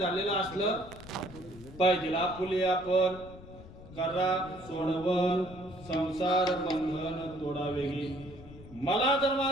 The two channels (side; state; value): left; noise; rumble, 17 dB below the sound